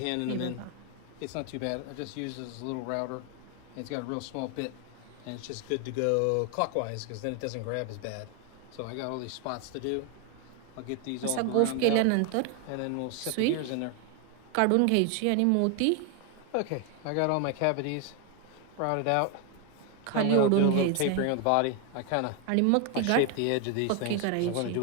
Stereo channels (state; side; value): different; both; correlation 0.01